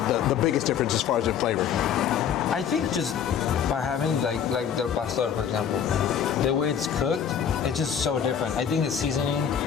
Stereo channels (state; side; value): quieter; right; 8.3 dB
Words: the biggest difference as far as the flavor? I think just by having like del pastor, for example, the way it's cooked, it's just so different. I think the seasoning,